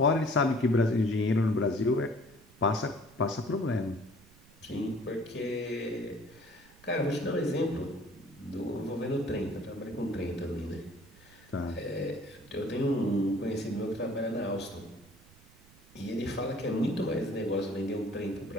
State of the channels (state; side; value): noise; right; rumble, 25 dB below the sound